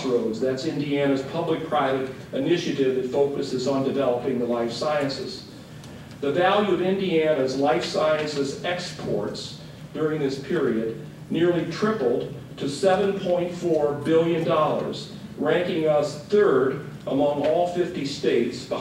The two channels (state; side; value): identical; both; correlation 1.00